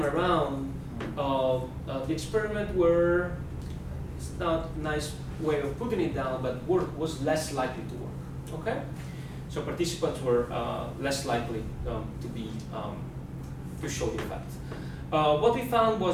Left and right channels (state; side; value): identical; both; correlation 1.00